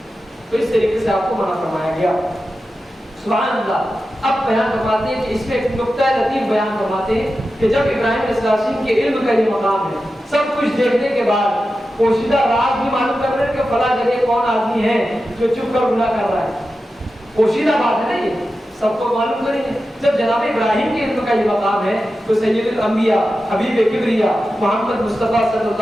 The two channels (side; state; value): both; normal; correlation 0.92